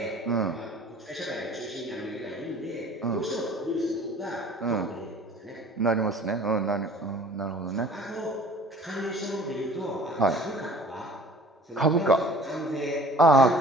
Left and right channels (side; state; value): both; normal; correlation 0.48